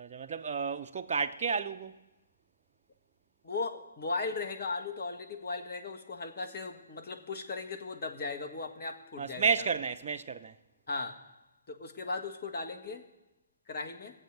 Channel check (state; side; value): inverted; both; correlation -0.58